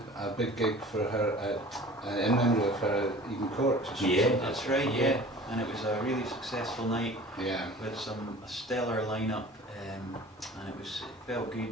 big gig for her in memory of her at Eden Court. That's right. Yeah, and it was a really successful night. With a stellar lineup, and it felt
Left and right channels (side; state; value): both; normal; correlation 0.43